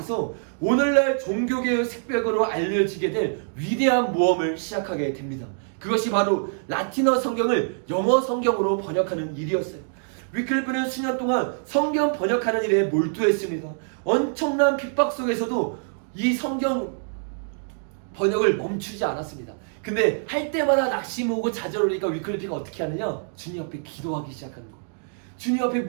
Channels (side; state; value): left; silent; digital silence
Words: 오늘날 종교개혁 색벽으로 알려지게 될 위대한 모험을 시작하게 됩니다. 그것이 바로 라틴어 성경을 영어 성경으로 번역하는 일이었어요. 위클리프는 수년 동안 성경 번역하는 일에 몰두했습니다. 엄청난 핍박 속에서도 이 성경 번역을 멈추지 않았습니다. 근데 할 때마다 낙심 오고 좌절 오니까 위클리프가 어떻게 하느냐? 주님 앞에 기도하기 시작하는 거예요. 주님 앞에